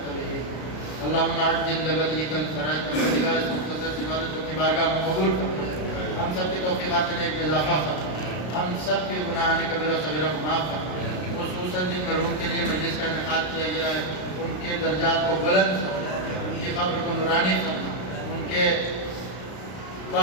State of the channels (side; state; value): right; late; 33 ms